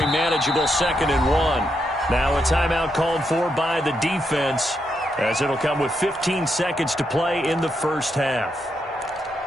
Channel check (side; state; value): both; normal; correlation 0.81